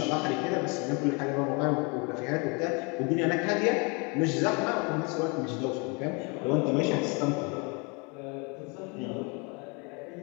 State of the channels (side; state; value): right; quieter; 31.6 dB